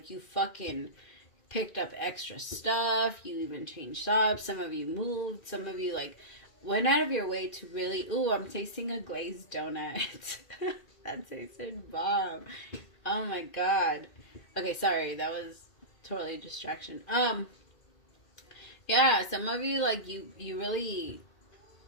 you fucking picked up extra stuff. You even changed jobs. Some of you moved. Some of you, like, went out of your way to really... Ooh, I'm tasting a glazed donut. That tasted bomb. Oh, my God. Okay, sorry. That was... totally distraction. Yeah, some of you, like, you really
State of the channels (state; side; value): late; right; 2.7 ms